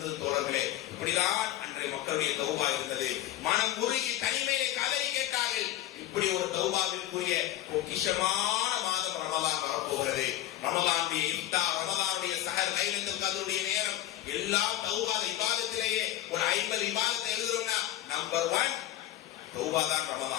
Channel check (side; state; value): right; quieter; 13.9 dB